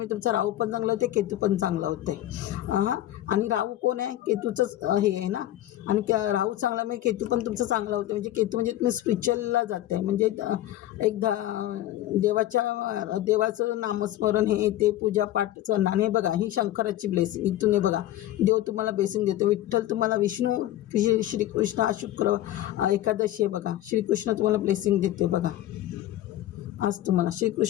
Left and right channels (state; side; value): quieter; right; 13.8 dB